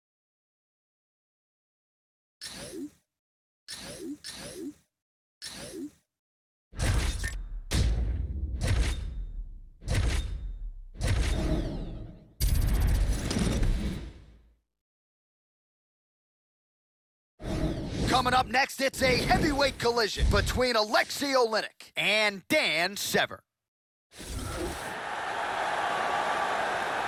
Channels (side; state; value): both; identical; correlation 1.00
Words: Coming up next, it's a heavyweight collision between Alexei Oleinik and Dan Severn.